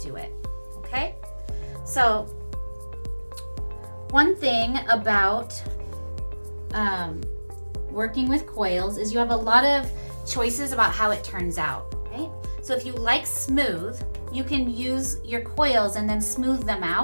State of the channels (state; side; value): inverted; both; correlation -1.00